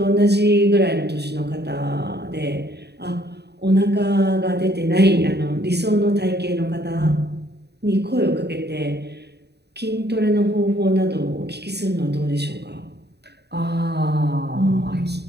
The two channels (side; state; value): left; late; 0.48 ms